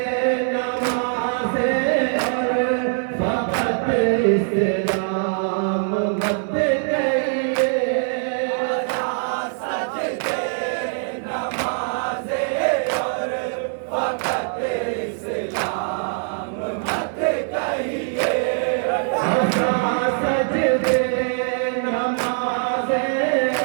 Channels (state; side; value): silent; left; 61 dB below the other